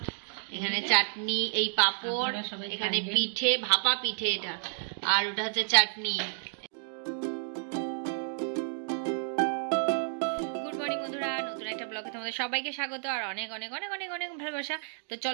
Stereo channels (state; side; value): silent; left; digital silence